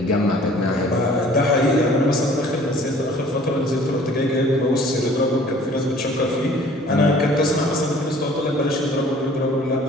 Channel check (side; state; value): both; normal; correlation 0.52